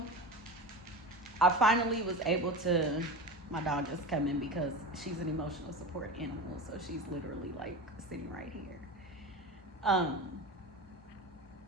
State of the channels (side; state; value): both; normal; correlation 0.27